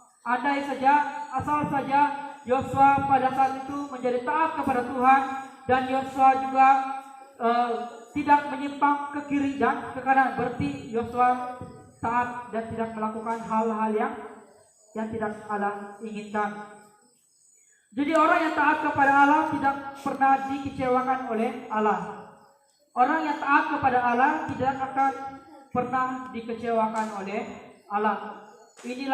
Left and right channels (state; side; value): identical; both; correlation 1.00